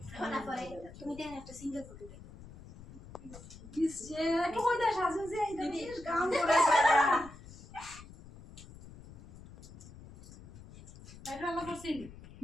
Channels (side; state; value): left; noise; rumble, 17 dB below the sound